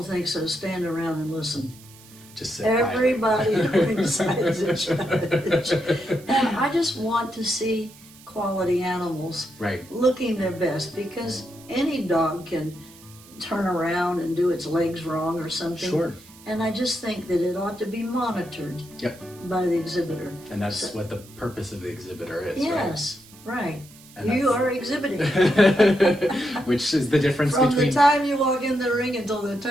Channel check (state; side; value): noise; right; hiss, 22 dB below the sound